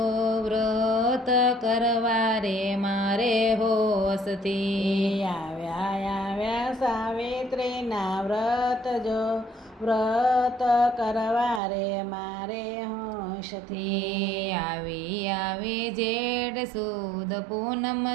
વ્રત કરવા રે મારે હોશથી. આવ્યા સાવિત્રીના વ્રત જો, વ્રત કરવા રે મારે હોશથી. આવી જેઠ સુદ પૂનમ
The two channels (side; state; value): left; drops out; at 11.6 s